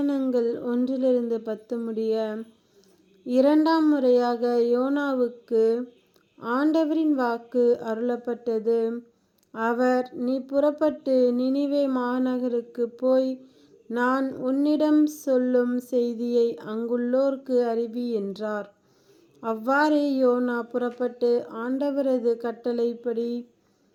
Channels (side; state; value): both; identical; correlation 1.00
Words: 1-10 முடிய. இரண்டாம் முறையாக யோனாவுக்கு ஆண்டவரின் வாக்கு அருளப்பட்டது. அவர், நீ புறப்பட்டு நினிவே மாநகருக்கு போய் நான் உன்னிடம் சொல்லும் செய்தியை அங்குள்ளோர்க்கு அறிவி என்றார். அவ்வாறே யோனா புறப்பட்டு ஆண்டவரது கட்டளைப்படி